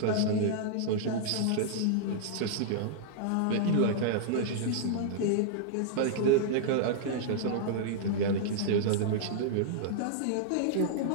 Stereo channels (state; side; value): different; both; correlation -0.02